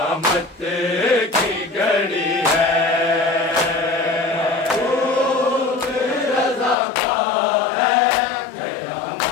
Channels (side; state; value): right; drops out; at 6.8 s